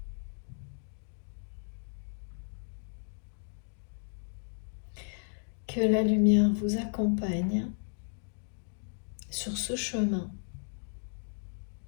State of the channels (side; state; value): right; silent; digital silence